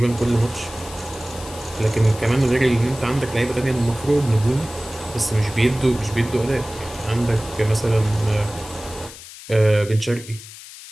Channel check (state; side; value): noise; left; hiss, 16 dB below the sound